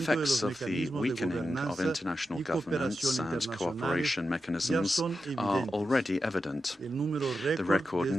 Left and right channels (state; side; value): normal; both; correlation 0.89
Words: of the weakening of international governance and cooperation mechanisms are already evident. The record